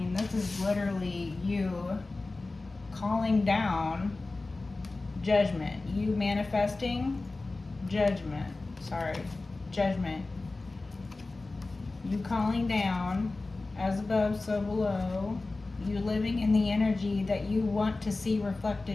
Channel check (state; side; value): quieter; right; 3.3 dB